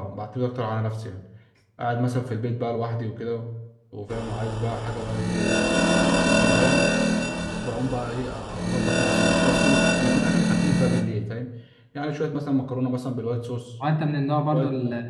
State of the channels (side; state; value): both; identical; correlation 1.00